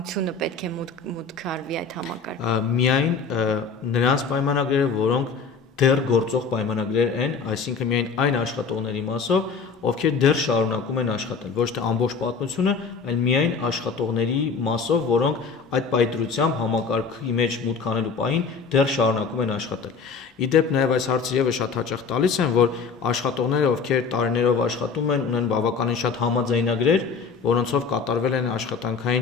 պետք է մուտք արվի այդ համակարգը։ Միայն նրանց պայմանագրերը, որոնք դեռ գործող պայմանագրեր են, այսինքն միայն այն աշխատողների մասով, ովքեր դեռ շարունակում են աշխատել, ոչ թե ամբողջ պատմությունը, այլ միայն աշխատողների մասով, որոնք այդ պայծրությամբ համակարգի մեջ մուտք անելու պահին դեռ շարունակում են աշխատել։ Իդեպ նաև այս հարցը եւս շատ հաճախ տալիս են, որ աշխատողները, ովքեր տարիներով աշխատում են, ունեն բավականին շատ համաձայնագրեր, որոնցով կատարվել են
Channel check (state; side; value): quieter; right; 5.3 dB